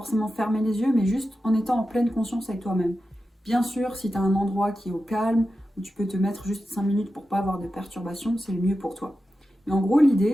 fermer les yeux, mais juste en étant en pleine conscience avec toi-même. Bien sûr, si tu as un endroit qui est au calme, où tu peux te mettre juste 5 minutes pour pas avoir de perturbations, c'est le mieux pour toi. Mais en gros,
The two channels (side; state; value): both; normal; correlation 0.92